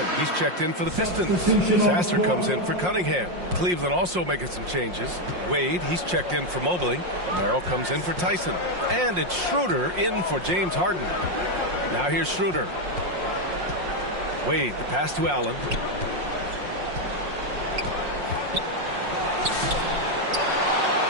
He's checked in for the Pistons. Sasser comes in for Cunningham. Cleveland also making some changes. Wade, he's checked in for Mobley. Merrill comes in for Tyson. And it's Schroeder in for James Harden. Now here's Schroeder. Wade, the pass to Allen.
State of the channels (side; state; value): left; late; 5.6 ms